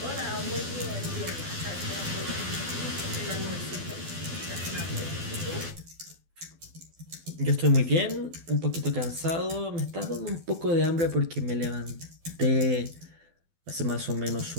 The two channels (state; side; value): late; left; 12 ms